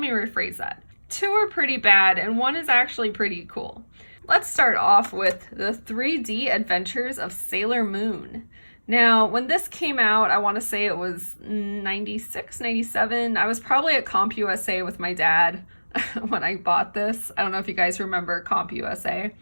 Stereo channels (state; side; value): inverted; both; correlation -1.00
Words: rephrase that. Two are pretty bad, and one is actually pretty cool. Let's start off with the 3D Adventures of Sailor Moon. Now, when this came out, I want to say it was 96, 97. I was probably at Comp USA with my dad when I bought this. I don't know if you guys remember Comp USA.